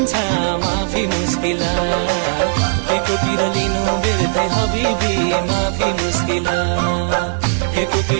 माफी मुस्किला, के कुतिर लिनु बेर्थे हबिबी माफी मुस्किला, के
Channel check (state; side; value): silent; left; digital silence